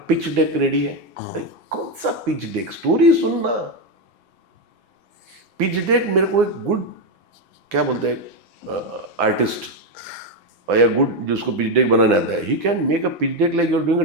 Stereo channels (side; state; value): left; late; 6.0 ms